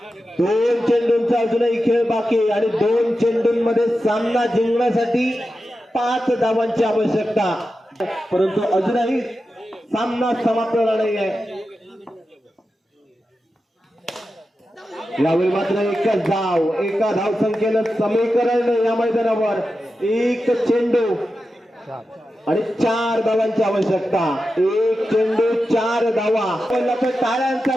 2 चेंडूंचा अजूनही खेळ बाकी आणि 2 चेंडूंमध्ये सामना जिंकण्यासाठी 5 धावांची आवश्यकता, परंतु अजूनही सामना समाप्त झाला नाहीये. यावेळी मात्र एकच धाव. एका धावसंख्येनं समीकरण या मैदानावर. 1 चेंडू आणि 4 धावांची आवश्यकता. 1 चेंडू 4 धावा. टाळ्यांचा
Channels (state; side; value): normal; both; correlation 0.91